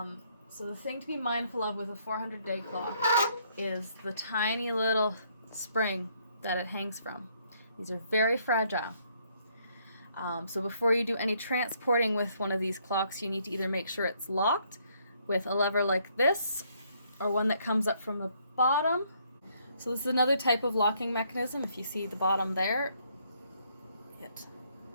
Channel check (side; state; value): both; inverted; correlation -0.69